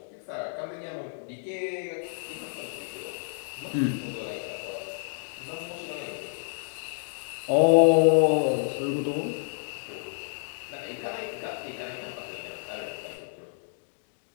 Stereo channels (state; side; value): silent; right; digital silence